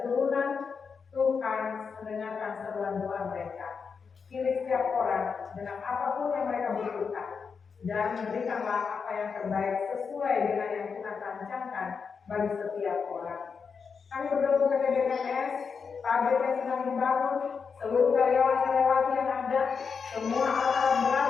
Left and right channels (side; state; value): right; quieter; 5.7 dB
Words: Tuhan mendengarkan seruan doa mereka. Pilih setiap orang dengan apapun yang mereka butuhkan dan berikanlah apa yang terbaik sesuai dengan yang Tuhan rancangkan bagi setiap orang. Kami berdoa untuk BKS, pabrik yang sedang dibangun, seluruh karyawan-karyawati yang ada, semua alat-alat berat